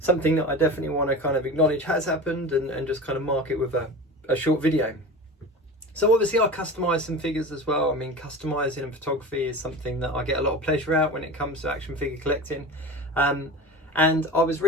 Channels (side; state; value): both; normal; correlation 0.33